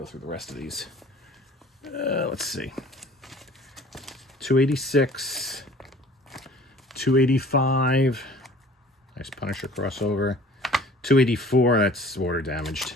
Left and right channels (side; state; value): both; normal; correlation 0.49